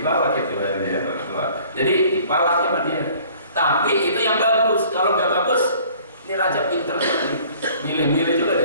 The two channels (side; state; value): both; inverted; correlation -0.53